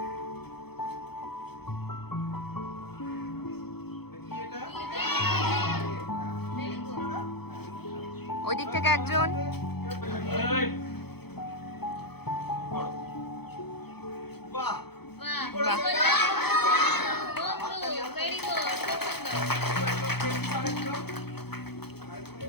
কি এটা? Very good. ওই দিক থেকে একজন। এই, করো। বাহ বাহ, কি করেছো? বন্ধু, very good, খুব সুন্দর।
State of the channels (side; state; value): right; late; 0.97 ms